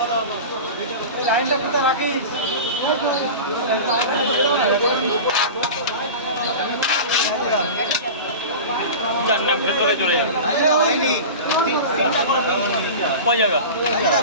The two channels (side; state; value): both; inverted; correlation -0.31